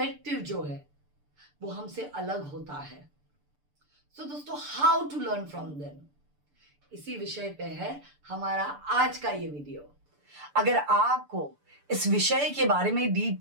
जो है वो हमसे अलग होता है। सो दोस्तों, how to learn from them, इसी विषय पे है हमारा आज का ये वीडियो। अगर आपको इस विषय के बारे में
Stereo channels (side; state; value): left; late; 6.8 ms